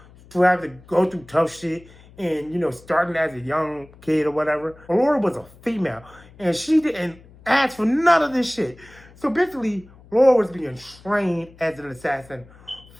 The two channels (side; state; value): left; noise; hum, 24 dB below the sound